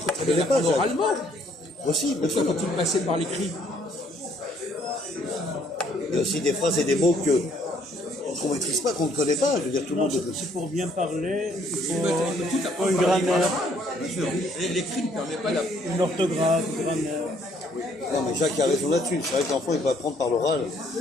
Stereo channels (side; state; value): both; normal; correlation 0.65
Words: peut très bien l'apprendre oralement. Aussi, bien sûr. Pourquoi faut-il passer par l'écrit? Il y a aussi des phrases et des mots qu'on ne maîtrise pas, qu'on ne connaît pas. Je veux dire, tout le monde. C'est pour bien parler, il Tout faut apprendre une par grammaire, Bien sûr. L'écrit ne permet pas d'aprendre. une orthographe, une grammaire. Non, mais Jacques a raison là-dessus. C'est vrai que l'enfant, il peut apprendre par l'oral